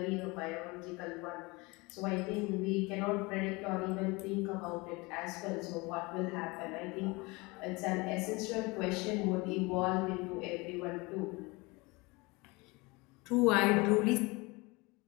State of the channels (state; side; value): quieter; right; 25.1 dB